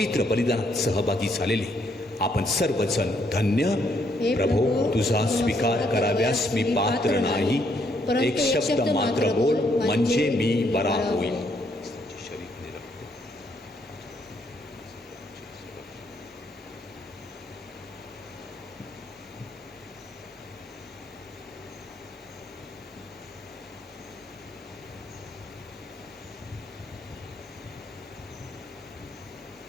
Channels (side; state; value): both; normal; correlation 0.72